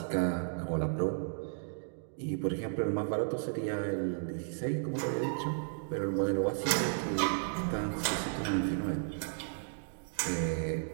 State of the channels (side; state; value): left; silent; digital silence